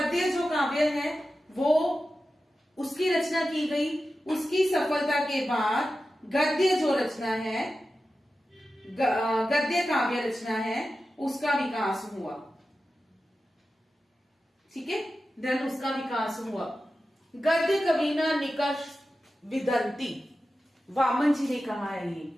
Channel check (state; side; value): normal; both; correlation 0.93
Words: जो काव्य है वो उसकी रचना की गई, उसकी सफलता के बाद गद्य जो रचना है, गद्य काव्य रचना है, उसका विकास हुआ। ठीक है, देन उसका विकास हुआ। गद्य कविना निकष विदंती, वामन जी ने कहा है ये